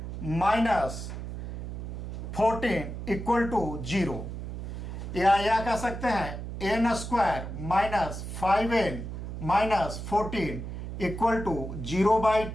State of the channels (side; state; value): right; noise; hum, 7 dB below the sound